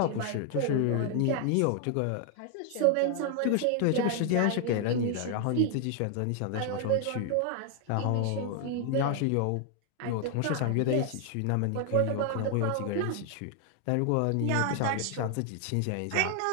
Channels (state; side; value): different; both; correlation 0.00